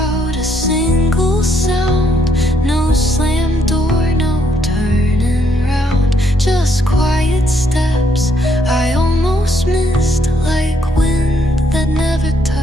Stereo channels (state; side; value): normal; both; correlation 0.72